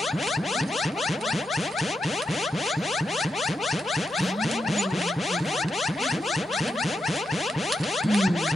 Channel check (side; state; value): both; normal; correlation 0.85